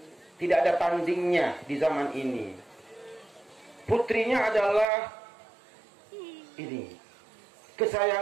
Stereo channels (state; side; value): drops out; left; at 4.9 s